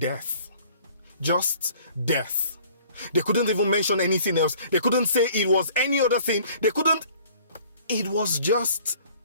Just death. They couldn't even mention anything else. They couldn't say it was any other thing. It was just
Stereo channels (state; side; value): inverted; both; correlation -0.53